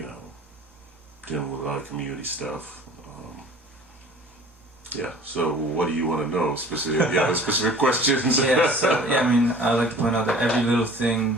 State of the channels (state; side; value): normal; both; correlation 0.46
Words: dealing with a lot of community stuff. So what do you want to know specifically? Yeah, specific questions. I like to point out that every little thing